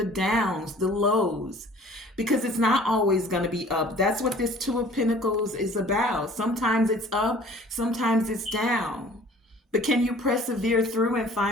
downs, the lows, because it's not always going to be up. That's what this Two of Pentacles is about. Sometimes it's up, sometimes it's down. But can you persevere through and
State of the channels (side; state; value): both; normal; correlation 0.50